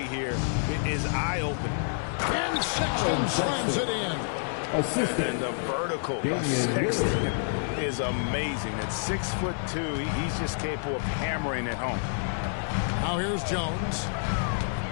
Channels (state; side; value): silent; right; digital silence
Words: here is eye-opening. And Sexton slams it in. And the vertical of Sexton is amazing. At 6'2", he's just capable of hammering it home. Now here's Jones.